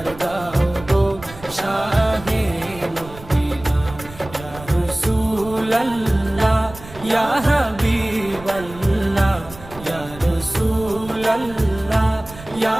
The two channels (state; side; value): noise; right; rumble, 17 dB below the sound